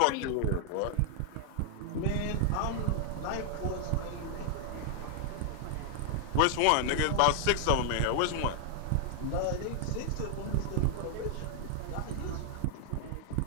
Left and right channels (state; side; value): different; both; correlation 0.00